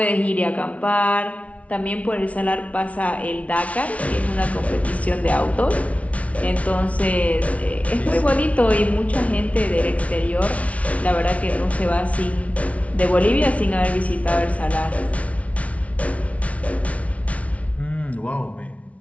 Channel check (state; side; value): late; right; 0.065 ms